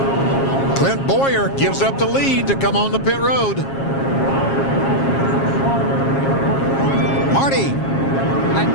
Clint Bowyer gives up the lead to come on the pit road. Marty.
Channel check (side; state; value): right; late; 7.4 ms